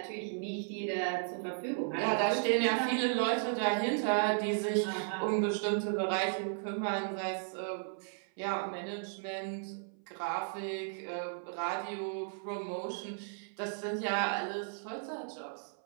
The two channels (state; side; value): silent; left; 54 dB below the other